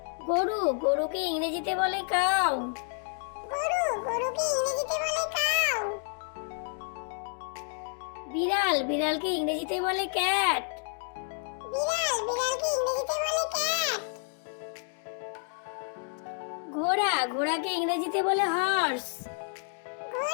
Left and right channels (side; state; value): right; silent; 58 dB below the other